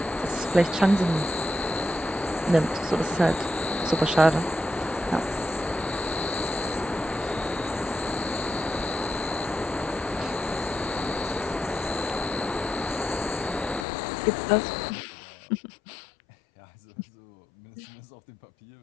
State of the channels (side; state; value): right; drops out; at 13.9 s